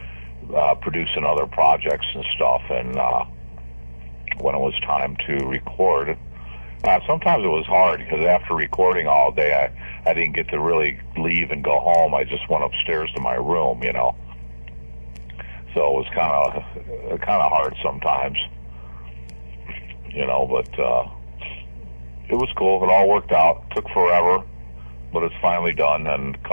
producing other projects and stuff. And when it was time to record, sometimes it was hard because after recording all day, I didn't get to really leave and go home. I just went upstairs to my room, you know. So it was kind of hard sometimes, you know. But it was cool. It all worked out. It took forever, but it's finally done and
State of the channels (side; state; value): both; inverted; correlation -1.00